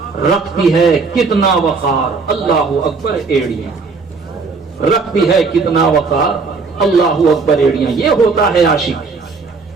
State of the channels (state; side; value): quieter; left; 4.5 dB